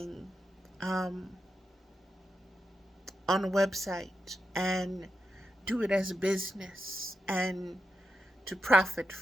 on a website and do it as a business and to profit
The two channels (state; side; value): normal; both; correlation 0.87